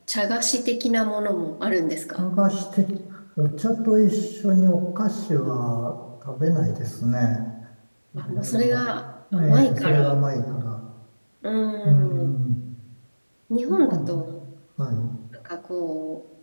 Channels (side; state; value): both; inverted; correlation -1.00